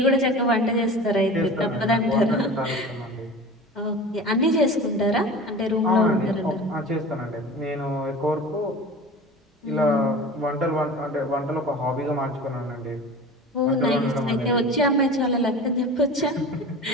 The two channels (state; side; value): normal; both; correlation 0.36